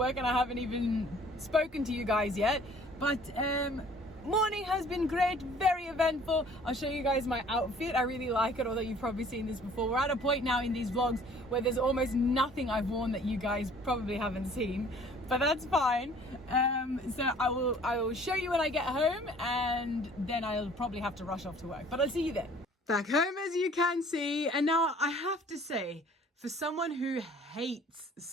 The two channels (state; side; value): normal; both; correlation 0.53